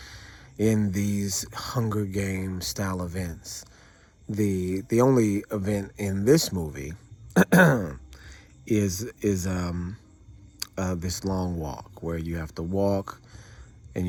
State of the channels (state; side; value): identical; both; correlation 1.00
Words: in these Hunger Games style events. The only event in this movie is this long walk where you have to walk, and